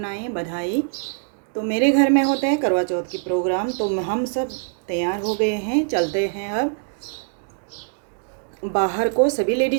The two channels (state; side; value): silent; left; digital silence